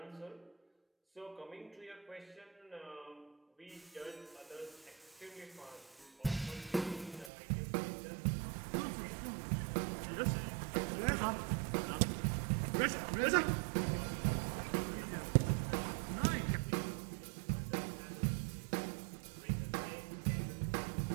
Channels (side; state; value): left; drops out; at 7.3 s